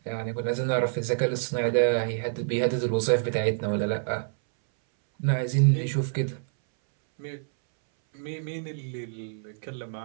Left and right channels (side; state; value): left; silent; 60 dB below the other